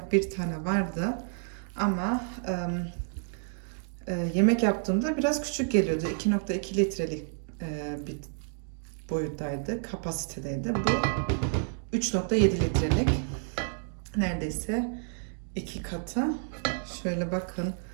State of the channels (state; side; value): silent; left; 58 dB below the other